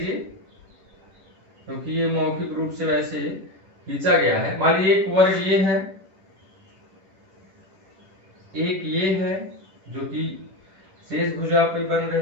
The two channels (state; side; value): late; left; 11 ms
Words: क्योंकि ये मौखिक रूप से वैसे खींचा गया है। मान लीजिए एक वर्ग ये है, एक ये है जो कि शेष भुजा पे बन